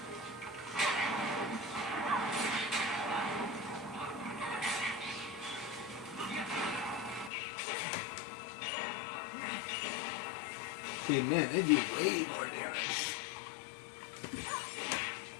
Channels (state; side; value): drops out; right; at 7.3 s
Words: See, man, they do way more damage.